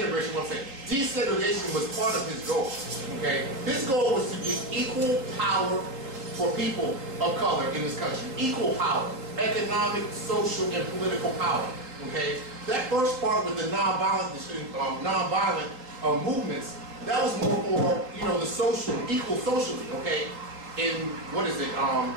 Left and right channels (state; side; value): late; left; 3.7 ms